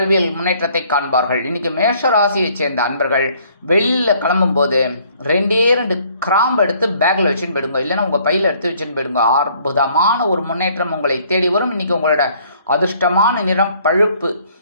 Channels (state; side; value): inverted; both; correlation -0.61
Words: முன்னேற்றத்தை காண்பார்கள். இன்னைக்கு மேஷ ராசியைச் சேர்ந்த அன்பர்கள் வெளியில கிளம்பும் போது 2 கிராம்பு எடுத்து பேக்ல வச்சுன்னு போயிடுங்க, இல்லைன்னா உங்க பையில எடுத்து வச்சுன்னு போயிடுங்க. அற்புதமான ஒரு முன்னேற்றம் உங்களை தேடி வரும். இன்னைக்கு உங்களோட அதிர்ஷ்டமான நிறம் பழுப்பு.